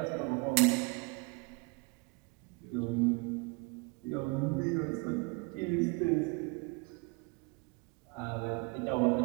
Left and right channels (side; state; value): left; quieter; 28.8 dB